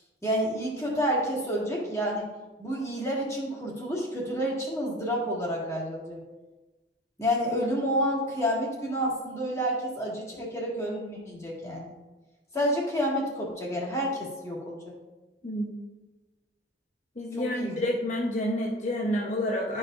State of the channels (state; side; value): normal; both; correlation 0.32